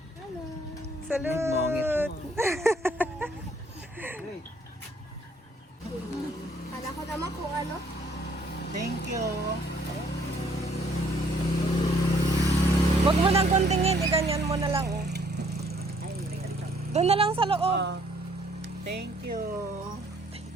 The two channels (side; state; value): both; normal; correlation 0.63